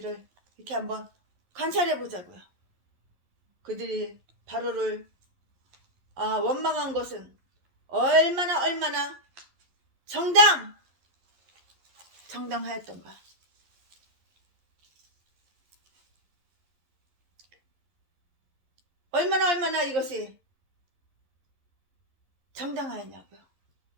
이렇게 한번 관찰해 보자고요. 그들이 바로를 원망한 것은 얼마나 정당하였던가. 얼마나 이것이 정당하였냐고요.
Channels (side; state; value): left; late; 11 ms